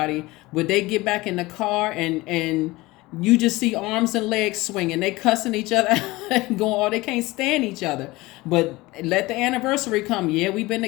But they get back in the car and you just see arms and legs swinging. They cussing each other going, oh, they can't stand each other. But let the anniversary come. Yeah, we've been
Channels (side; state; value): right; quieter; 20.6 dB